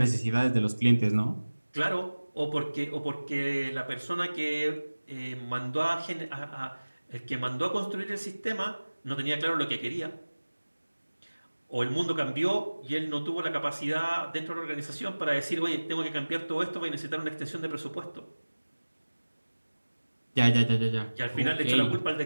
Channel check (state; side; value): inverted; both; correlation -1.00